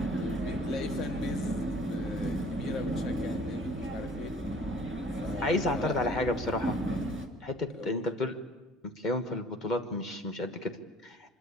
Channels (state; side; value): normal; both; correlation 0.52